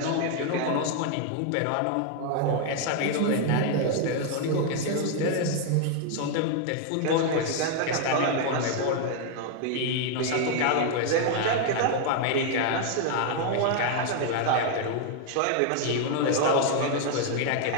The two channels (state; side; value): different; both; correlation 0.00